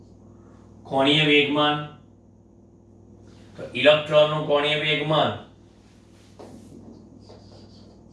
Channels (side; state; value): both; identical; correlation 1.00